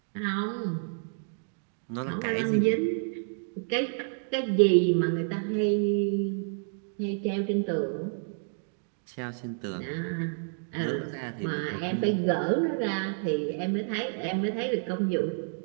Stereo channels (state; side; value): silent; left; digital silence